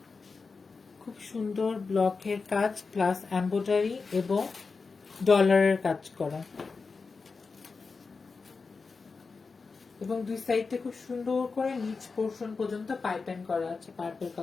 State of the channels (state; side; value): quieter; right; 4.5 dB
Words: খুব সুন্দর ব্লকের কাজ প্লাস এমব্রয়ডারি এবং ডলারের কাজ করা এবং দুই সাইডে খুব সুন্দর করে নিচ পোর্শন পর্যন্ত পাইপিং করা আছে পার্পল